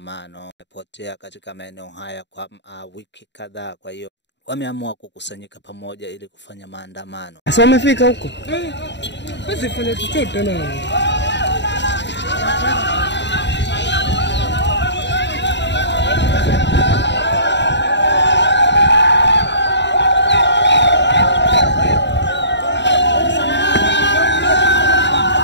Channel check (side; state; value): right; late; 0.52 ms